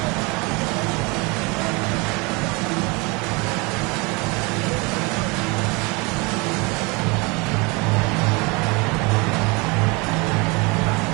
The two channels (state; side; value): quieter; left; 27.7 dB